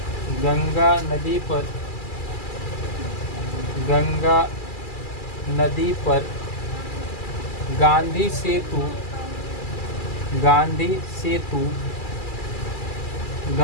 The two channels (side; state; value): right; late; 2.3 ms